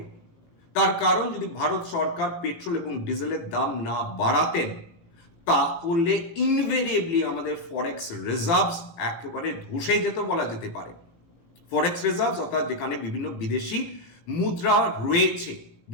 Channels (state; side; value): late; right; 18 ms